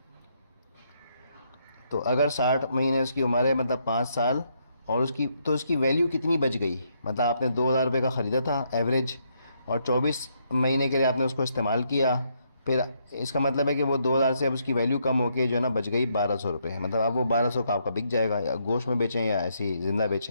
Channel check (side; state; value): both; inverted; correlation -0.75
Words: तो अगर 60 महीने उसकी उम्र है, मतलब 5 साल, और उसकी वैल्यू कितनी बच गई। मतलब आपने 2,000 रुपये का ख़रीदा था एवरेज, और 24 महीने के लिए आपने उसको इस्तेमाल किया, फिर इसका मतलब है कि वो 2,000 से अब उसकी वैल्यू कम होकर जो है ना बच गई 1,200 रुपये। मतलब अब वो 1,200 का आपका बिक जाएगा, या गोश्त में बेचें या ऐसे ही ज़िंदा